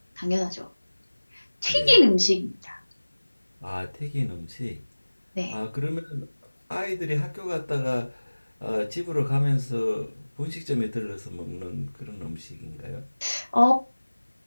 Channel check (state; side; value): inverted; both; correlation -1.00